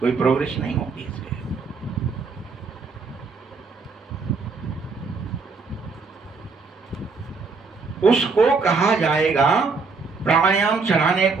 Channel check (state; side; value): quieter; left; 4.5 dB